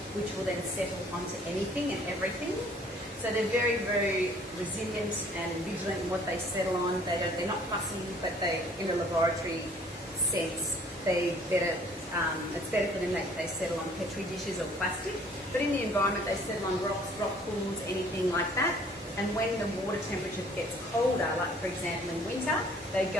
which will then settle onto anything and everything. So they're very, very resilient and vigilant in what they settle on. They're not fussy, but they, in a laboratory sense, it's better for them that they settle on Petri dishes or plastic. But in the environment, they settle on rocks, rock pools, anything like that. And when the water temperature gets colder, like for example in winter, they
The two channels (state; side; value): normal; both; correlation 0.56